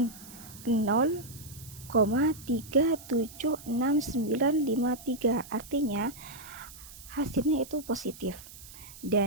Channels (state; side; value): noise; right; hiss, 17 dB below the sound